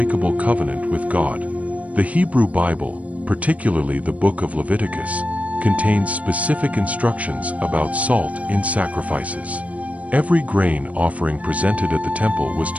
covenant with God. The Hebrew Bible, particularly the book of Leviticus, contains specific instructions about salt in sacrifices. Every grain offering presented at the temple was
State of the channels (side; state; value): left; late; 0.068 ms